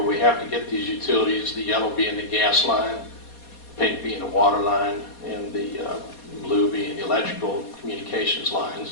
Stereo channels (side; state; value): right; late; 4.2 ms